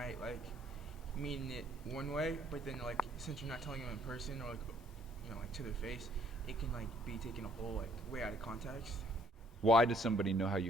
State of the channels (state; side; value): normal; both; correlation 0.63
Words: mean it one way, but then since you're not telling them in person or to their face, it can be taken a whole way out of context. Why does somebody know how